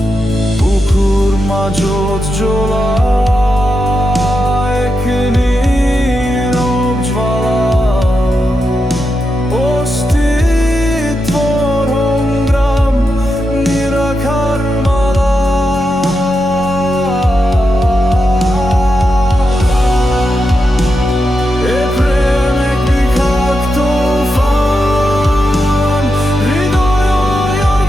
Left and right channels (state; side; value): normal; both; correlation 0.87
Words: বুকুৰ মাজত জ্বলা